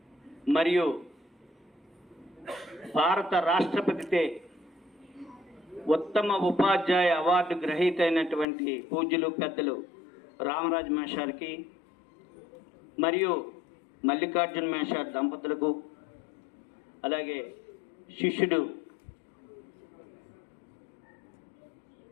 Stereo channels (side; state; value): right; drops out; at 8.5 s